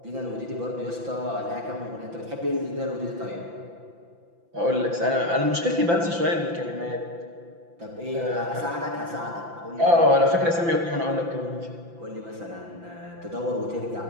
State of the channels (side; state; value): left; late; 5.9 ms